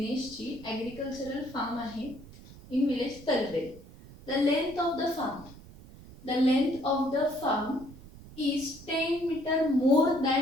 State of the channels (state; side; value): noise; right; rumble, 18 dB below the sound